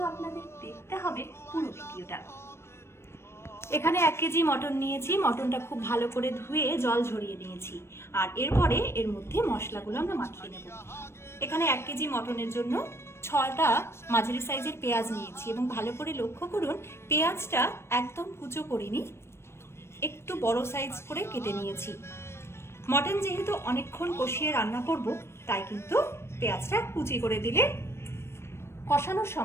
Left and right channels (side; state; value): right; late; 0.12 ms